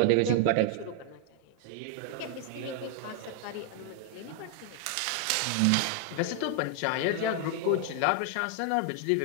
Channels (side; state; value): both; different; correlation 0.00